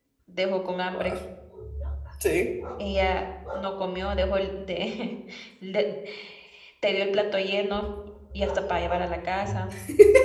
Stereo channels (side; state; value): both; identical; correlation 1.00